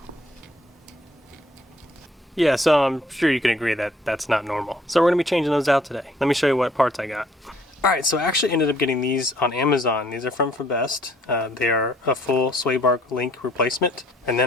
Yeah, so I'm sure you can agree that that's not normal. So we're gonna be changing those out today. Let me show you what parts I got. Alright, so I actually ended up getting these on Amazon. These are from Best. They are a full sway bar link replacement. And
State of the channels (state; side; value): normal; both; correlation 0.61